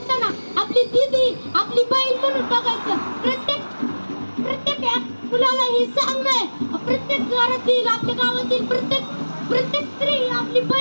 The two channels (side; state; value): both; inverted; correlation -1.00